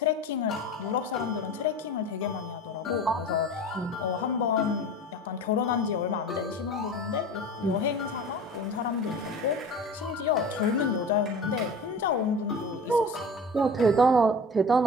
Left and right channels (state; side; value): normal; both; correlation 0.36